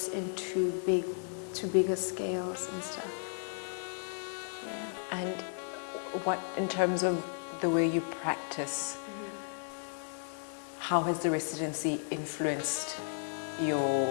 into bigger scales and stuff. Yeah. And what, in terms of the way you practice, how has the residency influenced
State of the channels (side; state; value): right; silent; 55 dB below the other